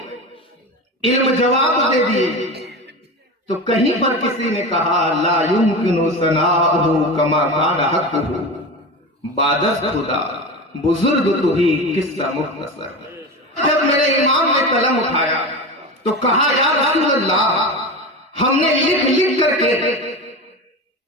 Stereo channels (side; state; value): both; normal; correlation 0.26